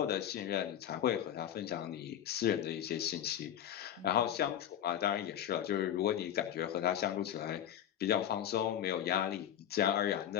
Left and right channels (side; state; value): right; quieter; 10.4 dB